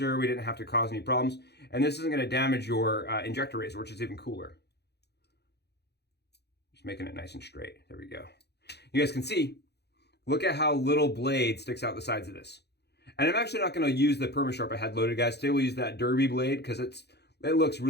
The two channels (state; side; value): late; right; 0.48 ms